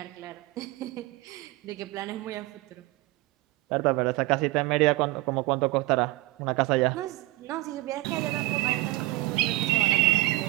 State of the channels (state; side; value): quieter; left; 19.8 dB